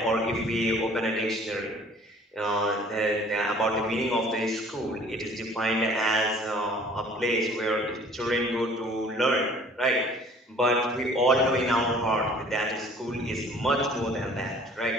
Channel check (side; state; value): both; normal; correlation 0.52